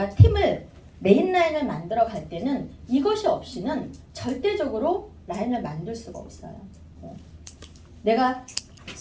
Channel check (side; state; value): both; identical; correlation 1.00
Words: 팀을, 메인 라인을 만들어 갈 때는 이것이 없이는 절대적으로 라인을 만들 수가 없어요. 내가